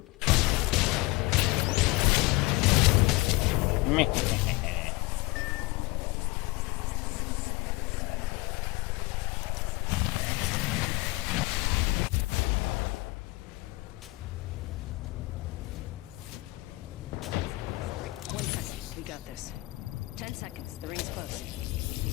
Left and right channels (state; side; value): quieter; right; 22.5 dB